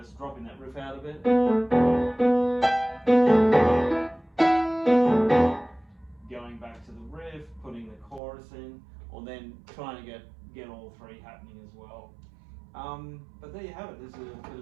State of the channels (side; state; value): left; drops out; at 8.2 s